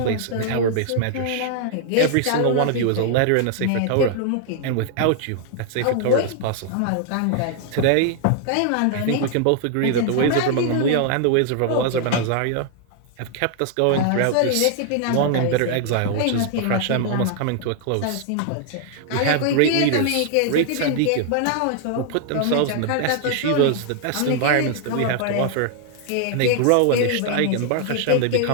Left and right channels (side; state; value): both; different; correlation 0.00